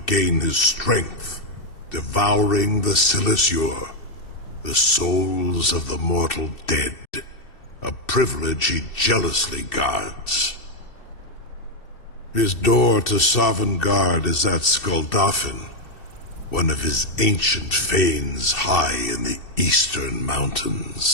his strength, devouring the Silesure, the souls of the mortal dead, a privilege he jealously guards. His door to Sovngarde is at Skuldafn, one of his ancient fanes high in the eastern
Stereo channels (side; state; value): right; late; 2.7 ms